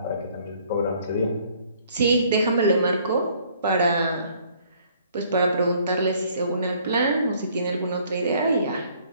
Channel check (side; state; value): both; inverted; correlation -0.61